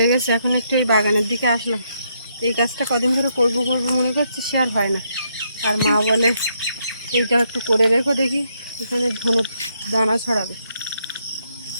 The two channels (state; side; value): inverted; both; correlation -0.76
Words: গেছে, এখন একটু এই বাগানের দিকে আসলাম। এই কাজটা কদিন ধরে করবো করবো মনে করছি, সে আর হয় না। আর মা বলে এইটা একটু করে রেখো, দেখি এখানে ধনে দানা ছড়াবে।